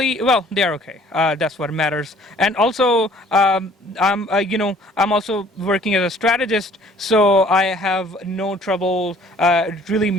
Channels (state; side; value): normal; both; correlation 0.55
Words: well, they are okay. That's what matters. And also, I'm also working as a strategist, so I have no trouble really